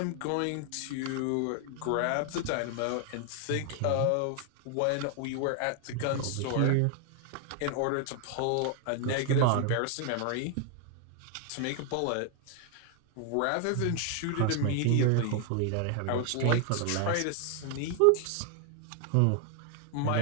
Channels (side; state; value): both; different; correlation 0.00